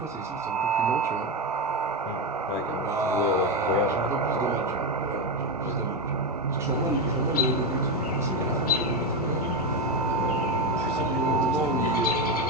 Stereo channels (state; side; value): normal; both; correlation 0.11